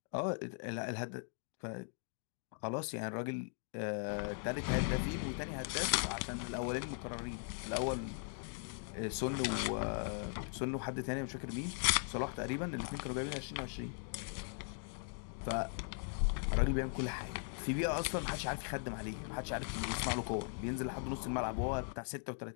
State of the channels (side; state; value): right; silent; 52 dB below the other